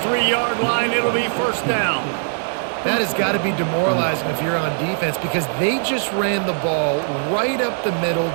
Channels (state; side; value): silent; left; 58 dB below the other